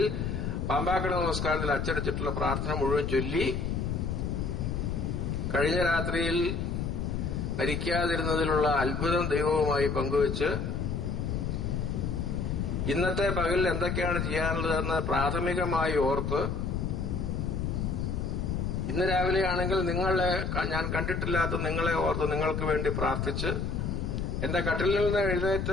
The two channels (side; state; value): left; noise; rumble, 1 dB below the sound